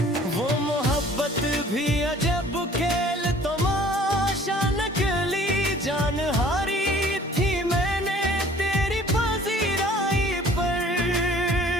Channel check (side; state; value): both; normal; correlation 0.52